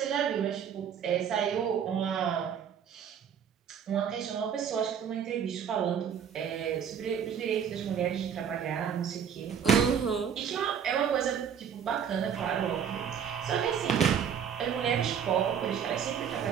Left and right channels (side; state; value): left; quieter; 8.0 dB